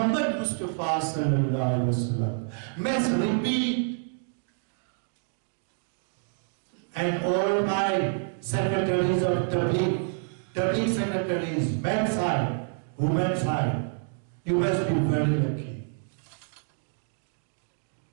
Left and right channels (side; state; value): left; silent; 59 dB below the other